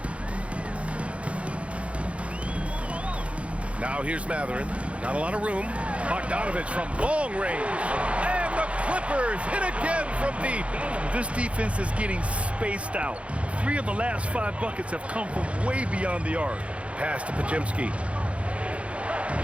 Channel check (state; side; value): late; left; 0.062 ms